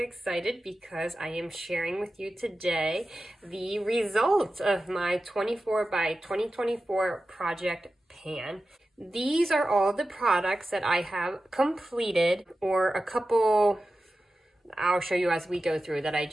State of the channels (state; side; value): normal; both; correlation 0.93